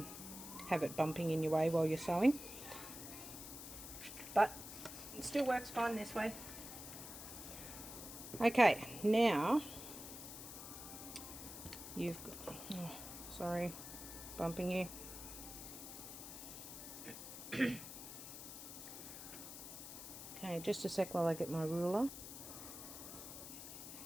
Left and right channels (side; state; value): left; noise; hiss, 10 dB below the sound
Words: it bumping in your way while you're sewing. But it still works fine this way. Okay, now you've got, oh, sorry, bumping you. Okay, just a sec while I get my ruler.